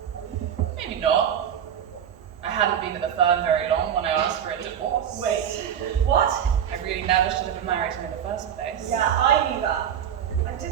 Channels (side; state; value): left; quieter; 9.1 dB